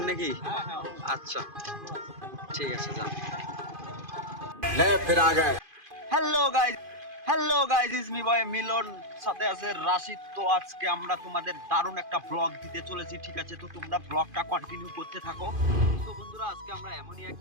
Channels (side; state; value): left; late; 2.5 ms